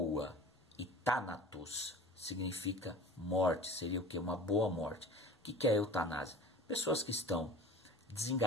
e thanatos significa morte, seria o que? Uma boa morte. O que é a eutanásia? Pessoas que estão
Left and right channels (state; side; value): normal; both; correlation 0.40